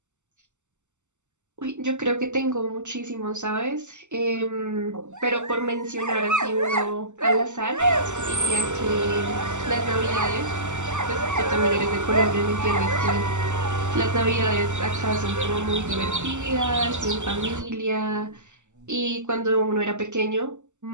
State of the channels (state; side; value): late; left; 0.84 ms